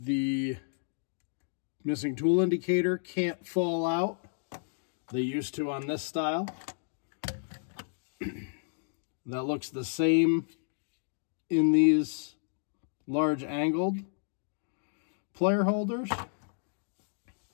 missing tool indicator can't fall out. They used to on this style. That looks the same in these large angled plier holders.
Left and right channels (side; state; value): right; silent; digital silence